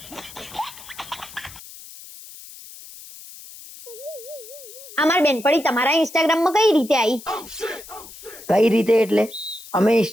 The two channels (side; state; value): left; noise; hiss, 17 dB below the sound